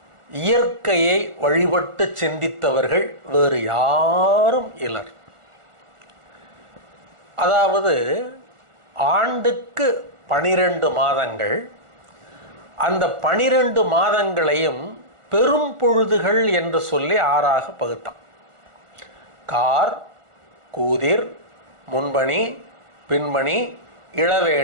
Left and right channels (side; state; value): left; late; 1.4 ms